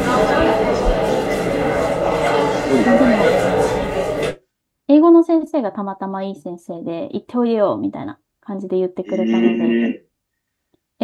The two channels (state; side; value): identical; both; correlation 1.00